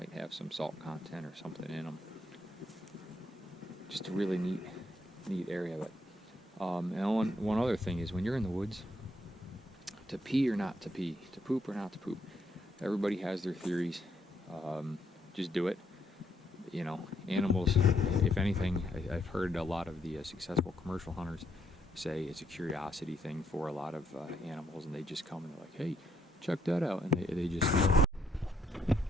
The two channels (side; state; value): both; normal; correlation 0.75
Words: have some salt content or something in them. Just a really neat area. But and one other thing is, when you're in the woods, to pee or not to pee, to poop or not to poop, everybody has their theories. Just do it. Animals, if anything, I've heard a lot of the successful commercial hunters say it's a curiosity thing for a lot of animals, and they just come and they're like, hey, check that out, and they just